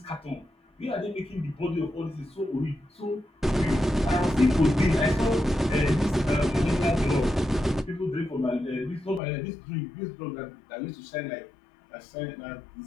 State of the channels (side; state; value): right; drops out; at 9.2 s